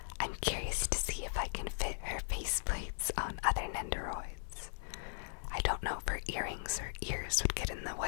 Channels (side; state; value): right; silent; 52 dB below the other